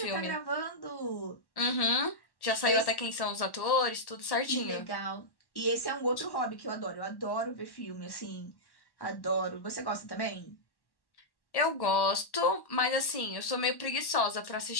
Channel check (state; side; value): late; right; 1.1 ms